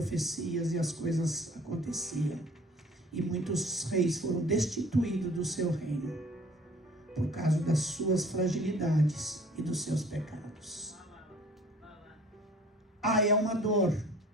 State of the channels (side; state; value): both; normal; correlation 0.51